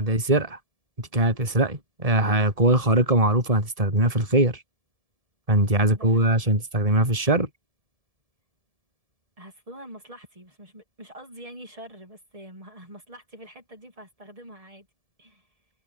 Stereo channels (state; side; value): late; left; 1.7 ms